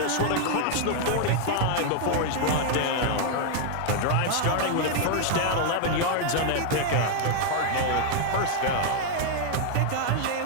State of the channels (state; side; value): different; both; correlation 0.00